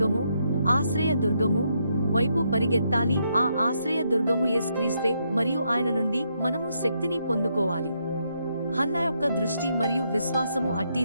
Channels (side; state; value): both; inverted; correlation -0.78